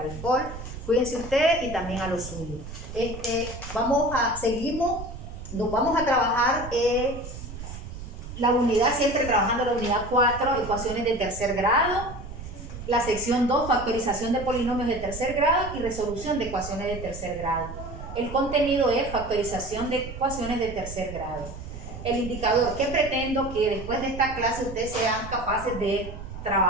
Cuídense ustedes y también a los suyos. Nos vamos a trabajar la unidad, siempre trabajando la unidad 4, ecuaciones de tercer grado, la sección 2, factorización de polinomios de tercer grado y resolución de ecuaciones de tercer grado. El contenido es factorización de ecuaciones de tercer grado. El indicador que pretendo que después de esta clase ustedes sean capaces de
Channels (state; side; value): noise; right; rumble, 11 dB below the sound